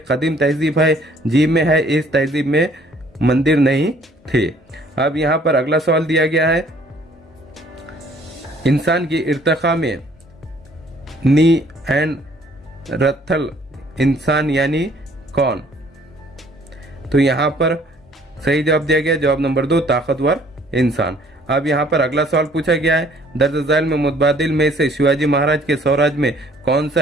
कदीम तहजीब है। जीम में है, इस तहजीब में मंदिर नहीं थे। अब यहाँ पर अगला सवाल दिया गया है इंसान की इर्तिका में नी एंड रथल इंसान यानी कौन। तो यहाँ पर सही जवाब दिया गया जवाब नंबर 2, ताकतवर इंसान। अब यहाँ पर अगला सवाल पूछा गया है दर्ज झैल में मुतबादिल में से शिवाजी महाराज के स्वराज में कौन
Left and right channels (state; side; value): normal; both; correlation 0.59